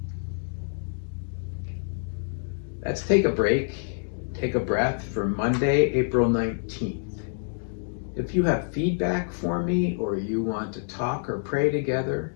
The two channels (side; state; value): right; silent; digital silence